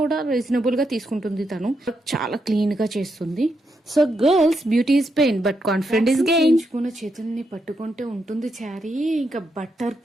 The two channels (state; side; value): normal; both; correlation 0.81